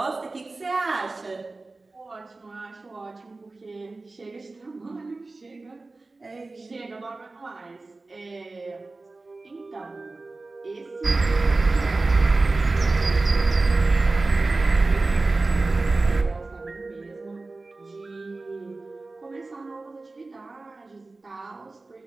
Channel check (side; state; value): left; quieter; 3.4 dB